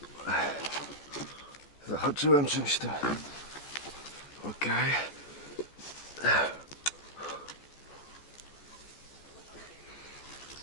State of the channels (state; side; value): late; right; 14 ms